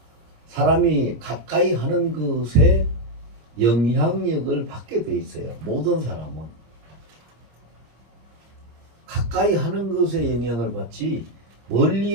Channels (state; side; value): late; left; 25 ms